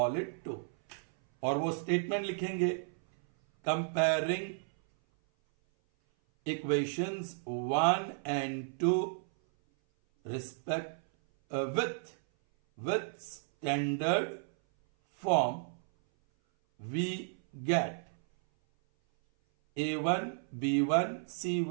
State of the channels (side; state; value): left; silent; 56 dB below the other